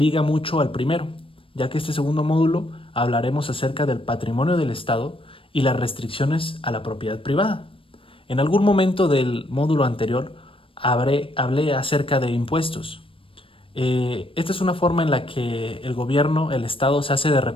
mucho al primero, ya que este segundo módulo hablaremos acerca del patrimonio del Estado y las restricciones a la propiedad privada. En algún momento del módulo anterior hablé acerca de impuestos. Esta es una forma en la que el gobierno, el Estado, se hace de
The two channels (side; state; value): right; late; 0.26 ms